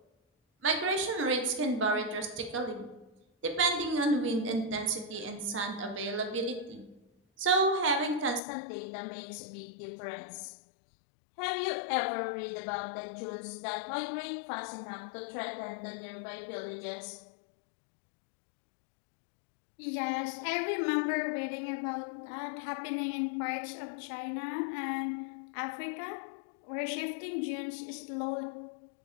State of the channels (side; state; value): right; drops out; at 8.4 s